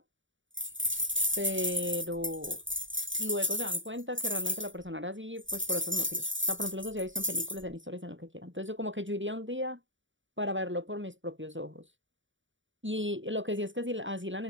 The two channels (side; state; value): left; late; 0.55 ms